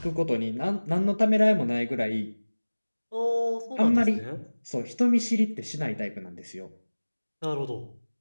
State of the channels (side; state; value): both; inverted; correlation -1.00